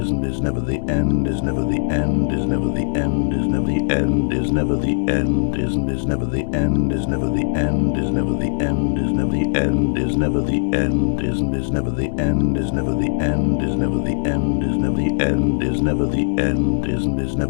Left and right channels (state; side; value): silent; right; digital silence